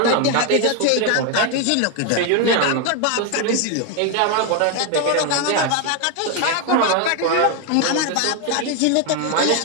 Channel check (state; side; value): different; both; correlation 0.01